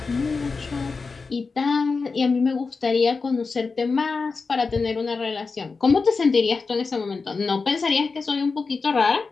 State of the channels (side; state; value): right; quieter; 4.4 dB